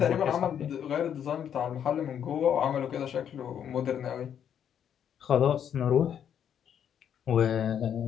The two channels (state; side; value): quieter; right; 8.9 dB